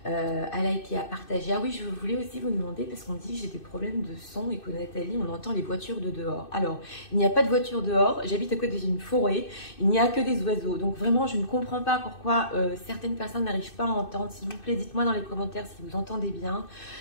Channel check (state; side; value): late; right; 2.6 ms